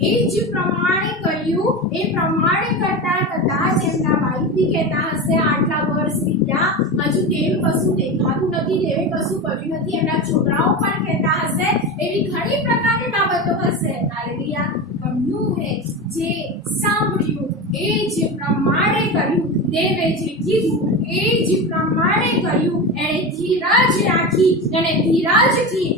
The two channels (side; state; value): both; normal; correlation 0.23